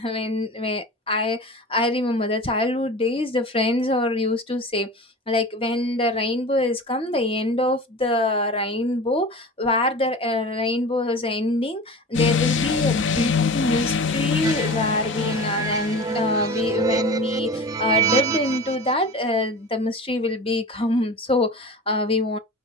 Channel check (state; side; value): normal; both; correlation 0.34